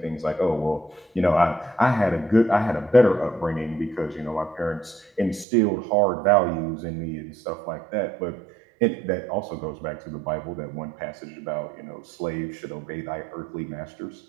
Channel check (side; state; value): left; drops out; at 5.5 s